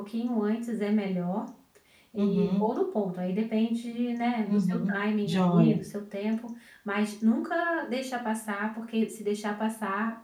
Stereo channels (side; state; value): both; identical; correlation 1.00